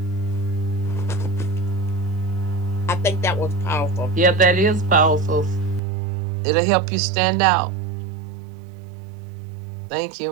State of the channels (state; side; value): drops out; left; at 5.8 s